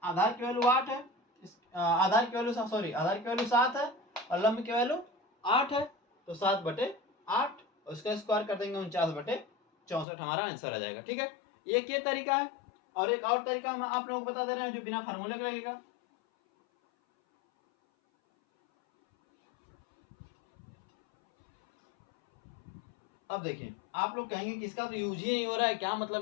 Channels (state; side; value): drops out; right; at 10.1 s